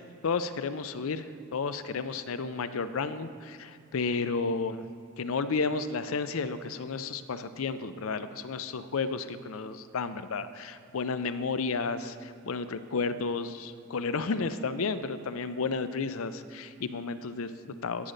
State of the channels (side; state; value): right; quieter; 4.1 dB